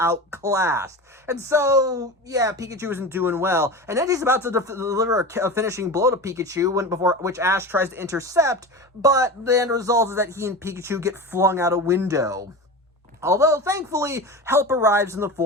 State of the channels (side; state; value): both; normal; correlation 0.28